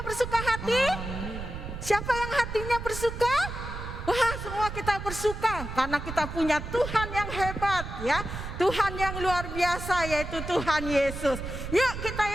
bersuka hati? Siapa yang hatinya bersuka? Wah, semua kita bersuka karena kita punya Tuhan yang hebat ya. Tuhan yang luar biasa yaitu Tuhan Yesus. Yuk kita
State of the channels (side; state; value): right; noise; rumble, 7 dB below the sound